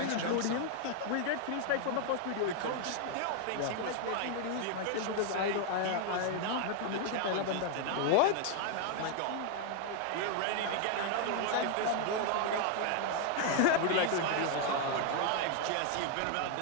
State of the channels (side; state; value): both; different; correlation 0.00